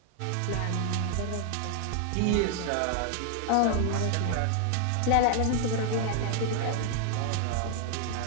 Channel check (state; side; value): different; both; correlation 0.00